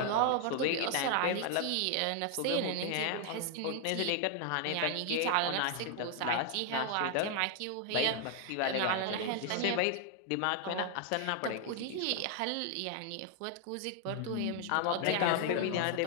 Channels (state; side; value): different; both; correlation 0.00